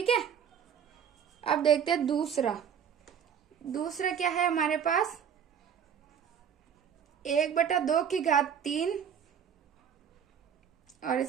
है, अब देखते हैं दूसरा क्या है हमारे पास, 1/2 की घात 3 और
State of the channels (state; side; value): quieter; left; 8.0 dB